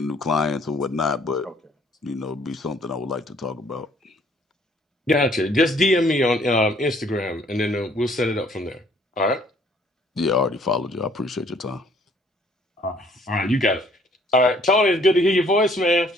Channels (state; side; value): normal; both; correlation 0.61